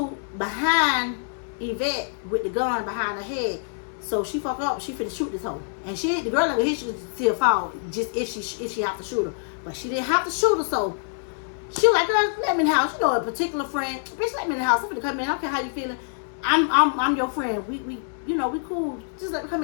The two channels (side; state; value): right; silent; digital silence